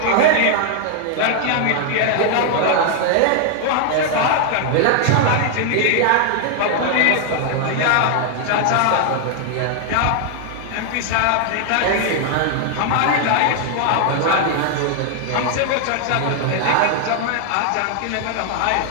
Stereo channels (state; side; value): different; both; correlation 0.00